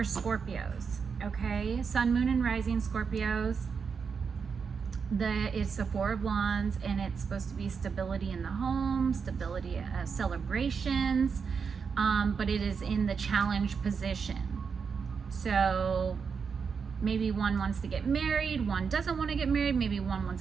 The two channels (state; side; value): quieter; left; 5.9 dB